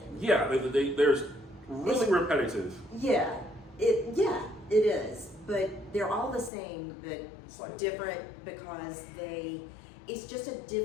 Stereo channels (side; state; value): right; drops out; at 6.5 s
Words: Yeah, there's really repetitive. Yeah, it is. But they're all the same, but Slightly different because it's just a